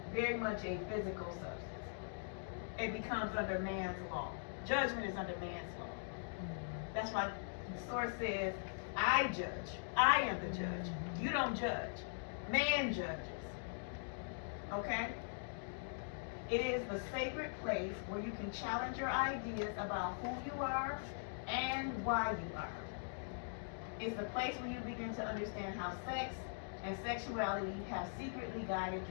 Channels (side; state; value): right; silent; digital silence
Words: very much a physical substance. It becomes under man's law. Judgment is under man's law. That's why the source says, I judge. I am the judge. You don't judge. Man judges. Okay? It is the sacred place where you can challenge your ideas about who you are and why you are. It's the place where you begin to understand how sex and sexuality have secretly guided